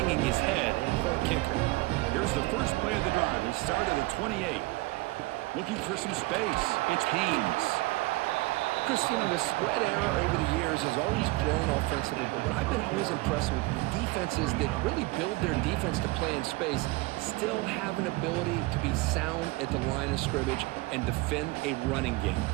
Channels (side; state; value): left; quieter; 22.2 dB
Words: his head. Poor kicker. Here's the first play of the drive. They start at the 28. Looking for some space. It's Haynes. Chris, you know, the spread era over the years has always grown offensively, but what I've been always impressed with defenses that really build their defense to play in space still have an ability to be sound at the line of scrimmage and defend a running game.